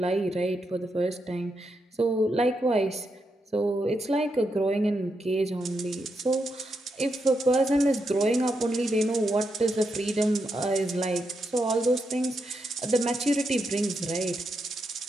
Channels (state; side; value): normal; both; correlation 0.83